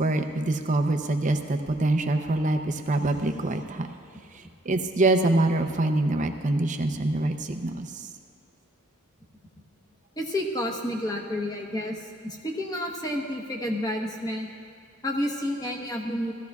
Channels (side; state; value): both; normal; correlation 0.68